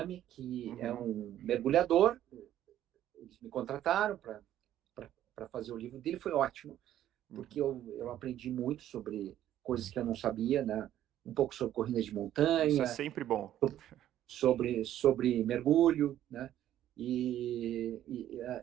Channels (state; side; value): quieter; left; 12.1 dB